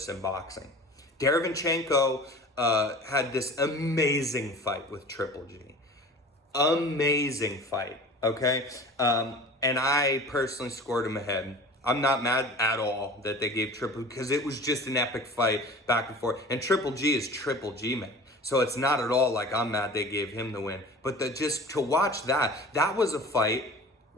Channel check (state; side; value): normal; both; correlation 0.40